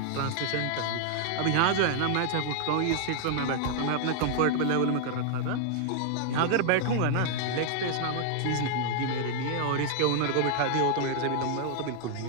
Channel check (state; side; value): different; both; correlation 0.00